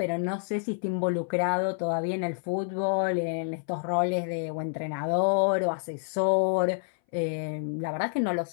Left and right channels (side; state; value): right; silent; 59 dB below the other